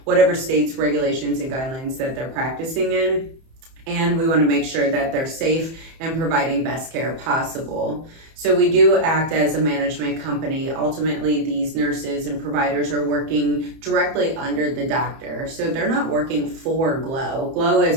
whatever state's regulations and guidelines that they're practicing in. And we want to make sure that they're safe and providing best care possible. So we do act as a management company. Ultimately, these nurses and providers are working directly under the doctor. So they're not working for GLO. GLO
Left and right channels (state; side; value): late; left; 31 ms